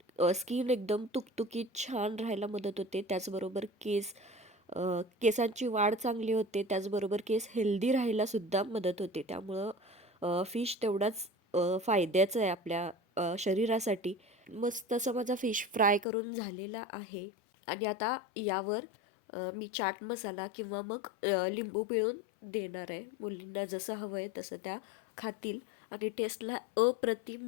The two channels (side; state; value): right; drops out; at 16.1 s